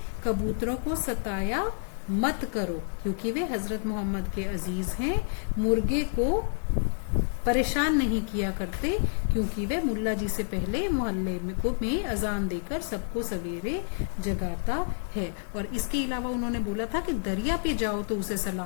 कबूतरों को सताया मत करो क्योंकि वे हजरत मोहम्मद के अजीज हैं। मुर्गे को परेशान नहीं किया करते क्योंकि वे मुल्ला जी से पहले मोहल्ले में अजान देकर सबको सवेरे जगाता है। और इसके अलावा उन्होंने बोला था कि दरिया पे जाओ तो उसे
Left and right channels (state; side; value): silent; right; 59 dB below the other